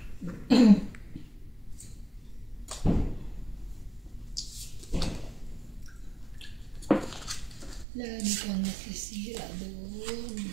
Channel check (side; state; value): left; drops out; at 7.9 s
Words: Lagi kang nakisira doon.